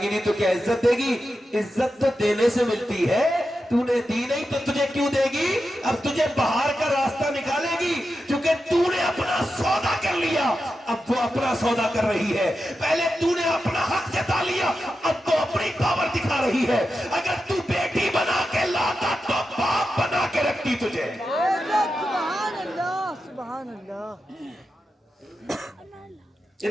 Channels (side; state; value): both; normal; correlation 0.90